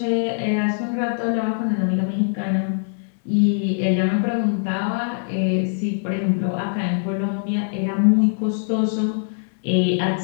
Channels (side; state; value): right; silent; digital silence